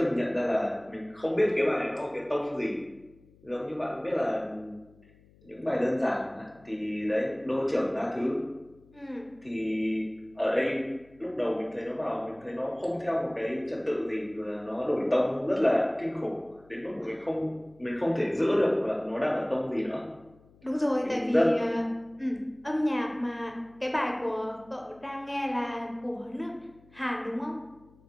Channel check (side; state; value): left; noise; hum, 28 dB below the sound